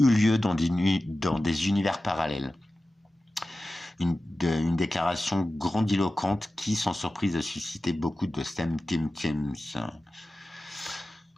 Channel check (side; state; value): both; normal; correlation 0.95